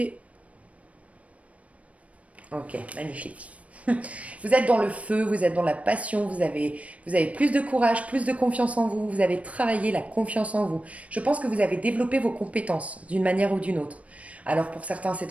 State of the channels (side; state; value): left; late; 0.065 ms